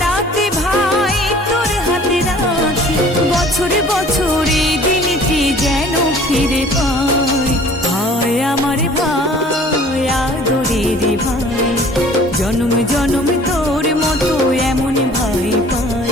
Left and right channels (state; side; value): normal; both; correlation 0.50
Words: ভাই তোর হাতে রাখি। বছরে বছরে দিনটি যেন ফিরে পাই। ভাই আমার ভাই আদরের ভাই, জনম জনম তোর মতো এমন ভাই